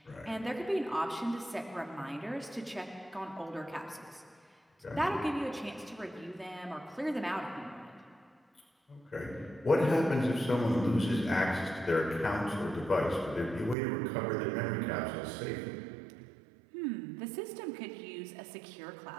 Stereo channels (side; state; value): left; drops out; at 13.8 s